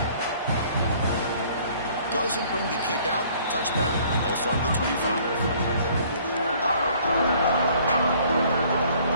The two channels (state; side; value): inverted; both; correlation -0.57